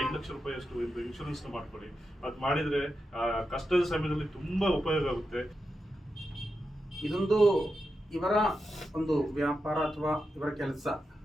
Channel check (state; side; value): normal; both; correlation 0.88